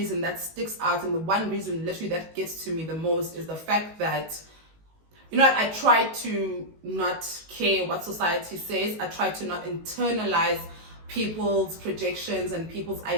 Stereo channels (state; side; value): late; left; 19 ms